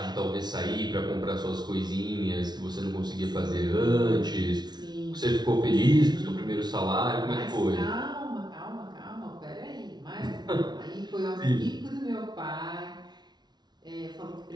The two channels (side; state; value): left; late; 0.20 ms